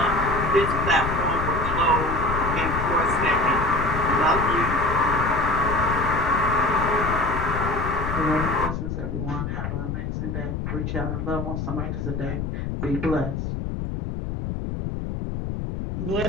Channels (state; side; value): noise; left; rumble, 4 dB below the sound